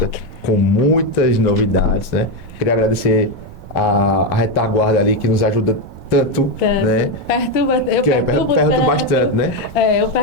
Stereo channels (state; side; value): noise; right; rumble, 17 dB below the sound